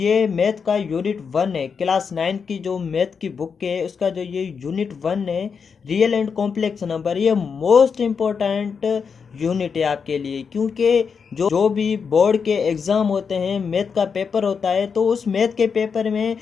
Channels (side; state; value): right; quieter; 6.0 dB